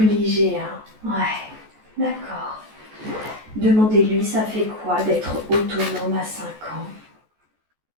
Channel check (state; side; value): late; left; 14 ms